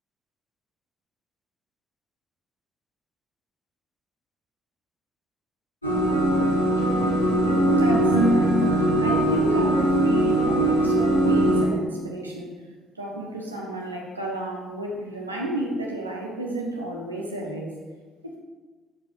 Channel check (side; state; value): both; normal; correlation 0.57